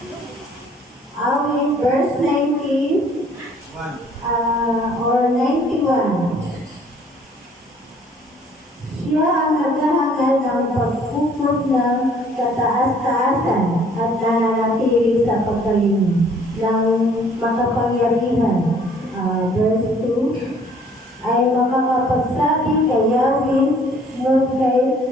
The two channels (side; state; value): both; normal; correlation 0.58